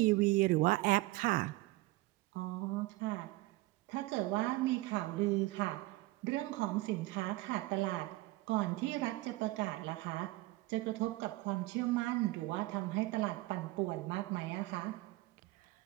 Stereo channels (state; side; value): quieter; left; 20.1 dB